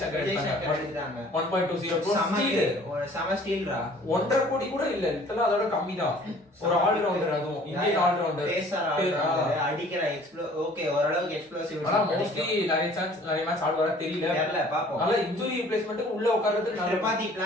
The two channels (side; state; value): both; normal; correlation 0.52